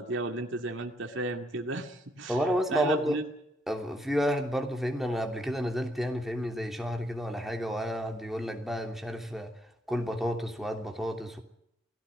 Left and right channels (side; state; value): both; normal; correlation 0.73